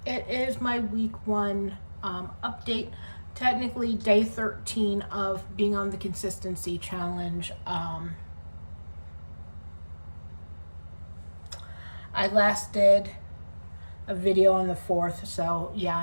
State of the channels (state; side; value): inverted; both; correlation -1.00